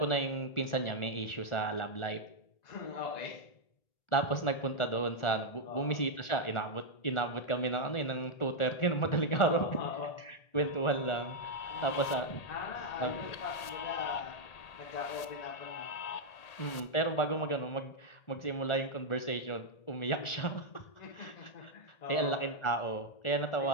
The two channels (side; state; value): right; late; 1.8 ms